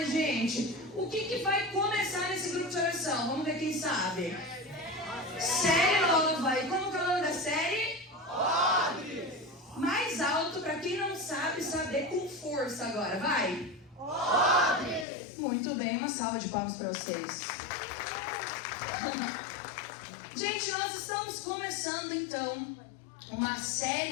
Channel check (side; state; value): right; drops out; at 15.1 s